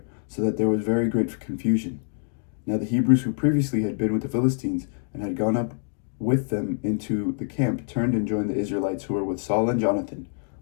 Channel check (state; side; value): silent; right; 59 dB below the other